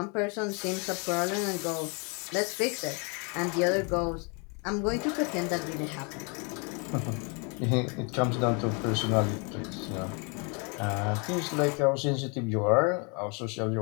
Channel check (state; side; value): quieter; right; 33.9 dB